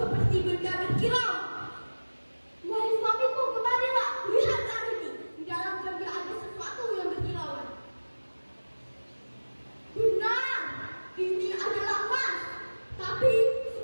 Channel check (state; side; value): inverted; both; correlation -1.00